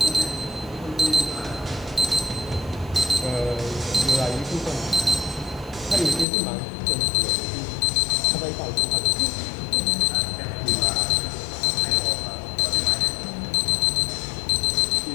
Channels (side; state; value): right; drops out; at 6.2 s